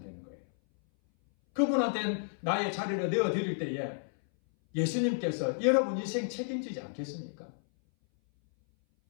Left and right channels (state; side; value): silent; right; 57 dB below the other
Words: 되는 거예요. 그분한테 나의 자리를 내어드릴 때에 예수님께서 여러분 인생 책임지지 않겠습니까?